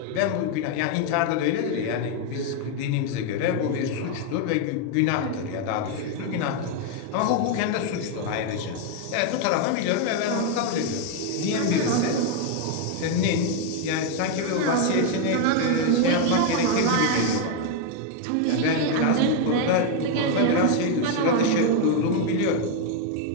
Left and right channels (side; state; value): both; different; correlation 0.01